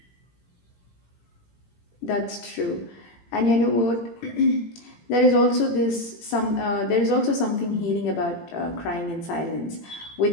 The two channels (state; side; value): late; right; 18 ms